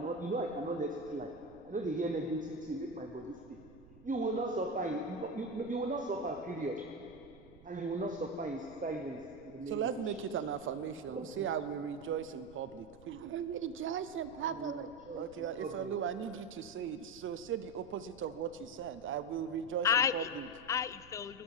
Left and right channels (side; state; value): right; noise; rumble, 21 dB below the sound